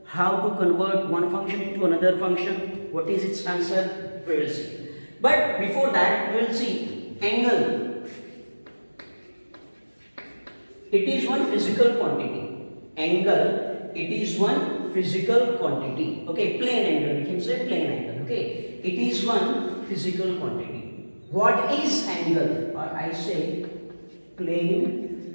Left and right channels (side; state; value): both; inverted; correlation -1.00